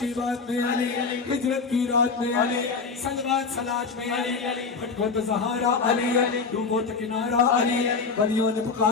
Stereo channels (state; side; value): quieter; right; 4.8 dB